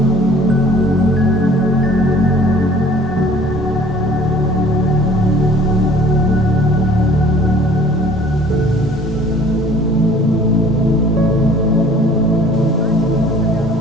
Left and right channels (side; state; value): both; normal; correlation 0.52